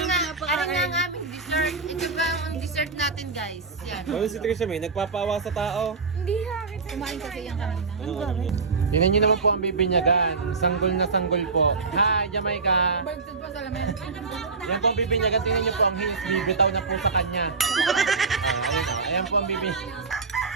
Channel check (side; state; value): left; quieter; 4.4 dB